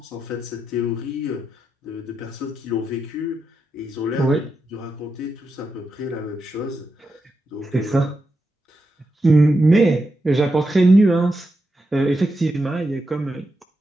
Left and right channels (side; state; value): both; normal; correlation 0.86